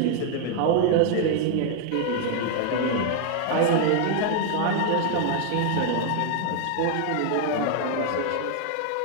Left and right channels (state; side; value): different; both; correlation 0.00